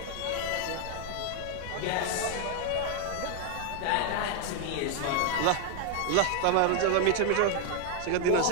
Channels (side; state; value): both; different; correlation 0.00